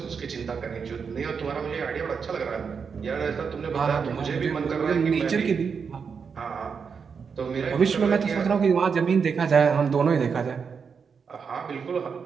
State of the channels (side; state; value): left; quieter; 6.0 dB